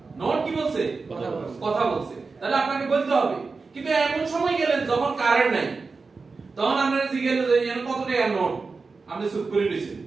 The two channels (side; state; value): left; quieter; 4.3 dB